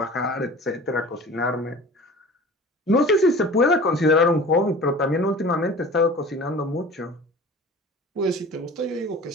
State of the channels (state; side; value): normal; both; correlation 0.41